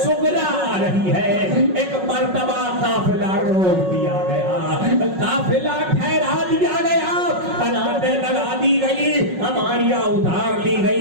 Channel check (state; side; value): late; left; 5.4 ms